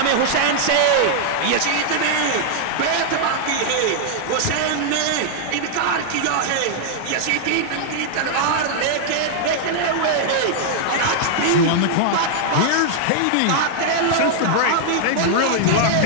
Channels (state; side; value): different; both; correlation -0.01